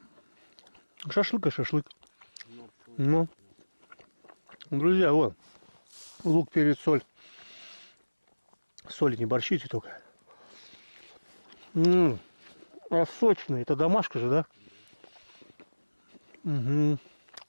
шашлык и шашлык. Ну, друзья, вот. Лук, перец, соль. Соли не борщите только. А сочный. Это домашка же, да? Угу.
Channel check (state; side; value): inverted; both; correlation -1.00